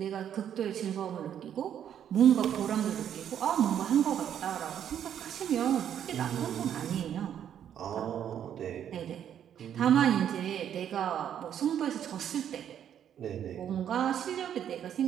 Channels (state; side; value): quieter; left; 9.6 dB